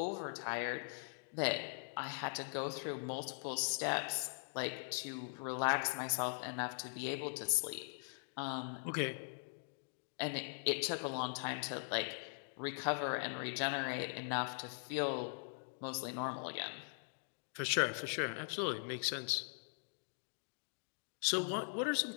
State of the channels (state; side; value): silent; right; digital silence